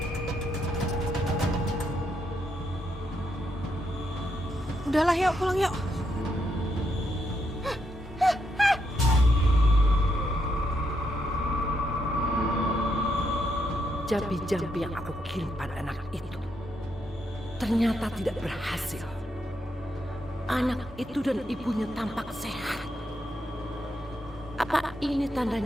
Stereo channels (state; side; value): normal; both; correlation 0.79